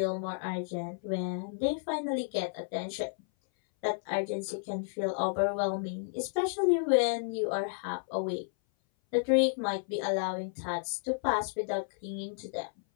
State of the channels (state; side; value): silent; right; 56 dB below the other